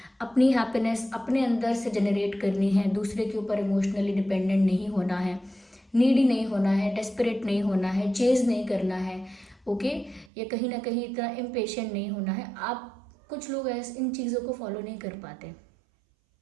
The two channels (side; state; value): left; drops out; at 10.3 s